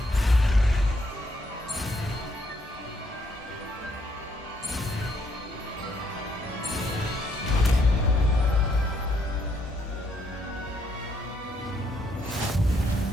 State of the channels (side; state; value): both; normal; correlation 0.72